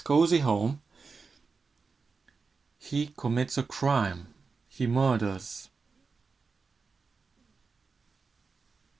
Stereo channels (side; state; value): left; quieter; 4.7 dB